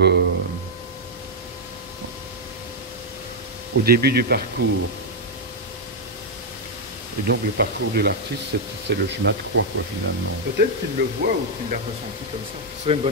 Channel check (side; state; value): both; normal; correlation -0.02